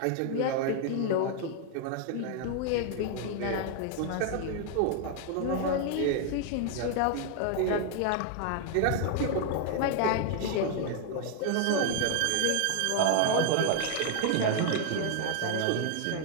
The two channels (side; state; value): both; different; correlation 0.00